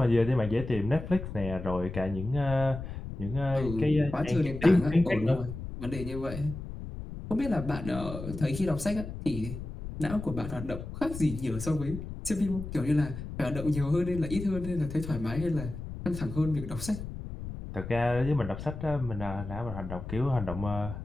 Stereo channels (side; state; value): left; noise; rumble, 9 dB below the sound